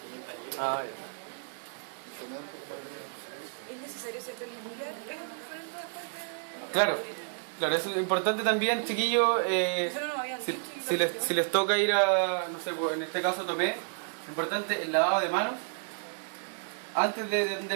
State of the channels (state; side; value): silent; left; 57 dB below the other